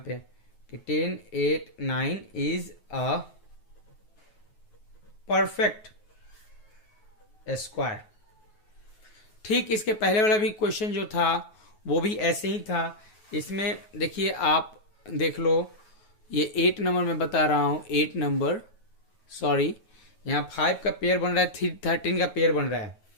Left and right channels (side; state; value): right; late; 9.3 ms